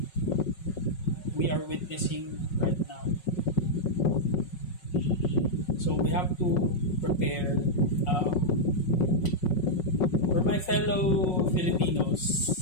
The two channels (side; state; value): right; late; 5.4 ms